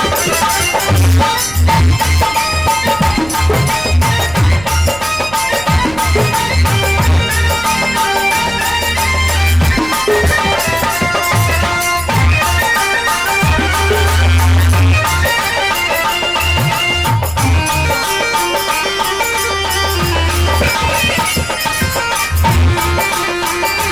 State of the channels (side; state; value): right; noise; hum, 16 dB below the sound